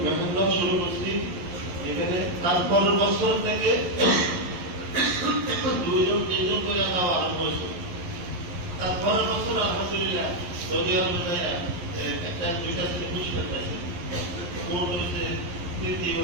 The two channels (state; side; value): late; left; 11 ms